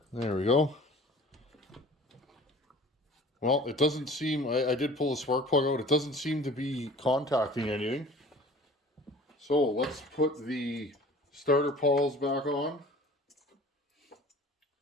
There we go. Well, it doesn't seem, I did pull the spark plug out. It doesn't seem to be contacting anything. So let's put the starter pawls back on.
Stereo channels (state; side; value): normal; both; correlation 0.46